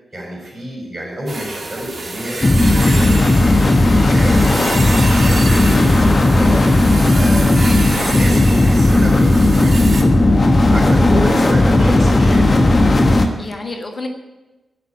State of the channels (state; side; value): normal; both; correlation 0.95